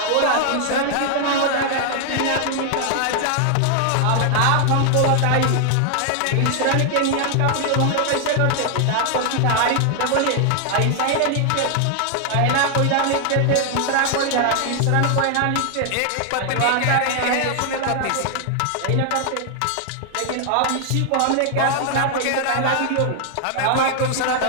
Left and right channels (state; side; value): different; both; correlation 0.00